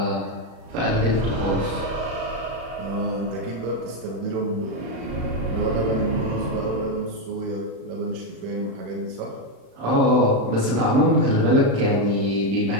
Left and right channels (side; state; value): left; late; 35 ms